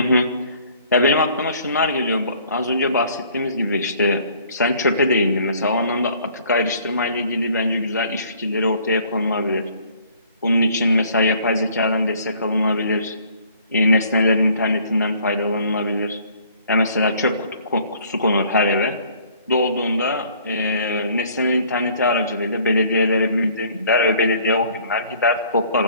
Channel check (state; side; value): inverted; both; correlation -0.57